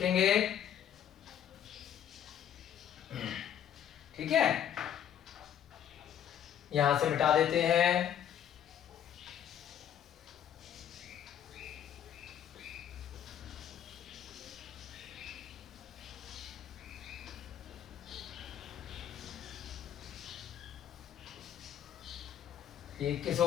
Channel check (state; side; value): quieter; right; 9.8 dB